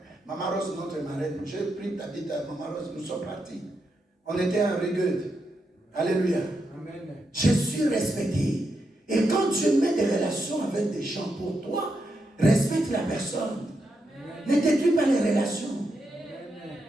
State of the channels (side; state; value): both; normal; correlation 0.84